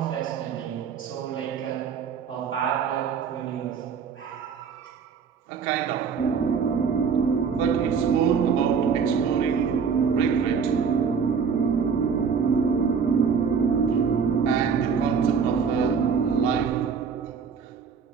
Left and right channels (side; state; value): left; quieter; 6.3 dB